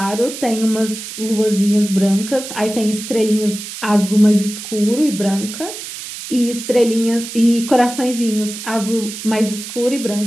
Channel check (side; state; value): right; noise; hiss, 10 dB below the sound